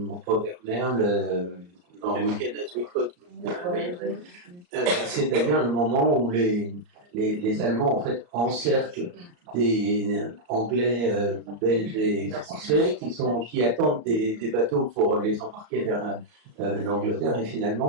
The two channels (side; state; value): left; late; 34 ms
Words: Robert Merle dans le week-end à Sweetcoat. C'est-à-dire le moment où les Allemands en fait encerclent des Anglais, Belges et Français qui attendent des bateaux pour les embarquer vers l'Angleterre et